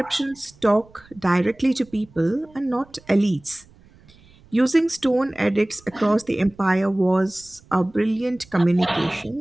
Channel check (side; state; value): right; noise; rumble, 27 dB below the sound